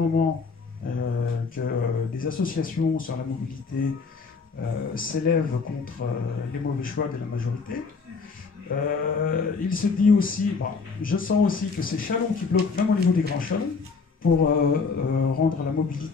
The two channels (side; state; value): right; quieter; 4.8 dB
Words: que des associations sur la mobilité s'élèvent contre les mauvais choix de la majorité. Il se dit aussi, bon, je sens aussi que c'est Châlons qui bloque même au niveau des grands chalons pour rendre la